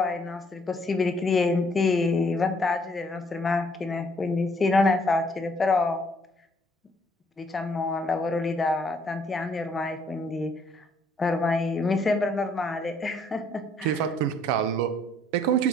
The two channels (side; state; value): both; normal; correlation 0.65